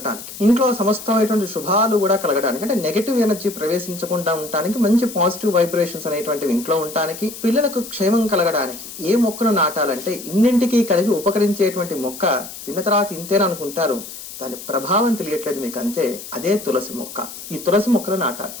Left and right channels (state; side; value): noise; left; hiss, 12 dB below the sound